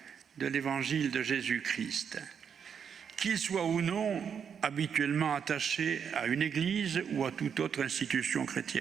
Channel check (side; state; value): left; quieter; 7.3 dB